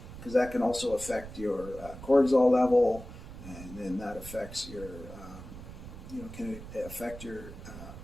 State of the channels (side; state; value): right; noise; rumble, 13 dB below the sound